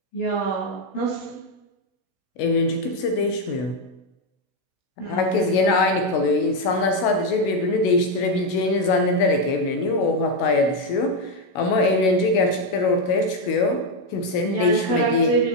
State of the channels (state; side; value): late; right; 16 ms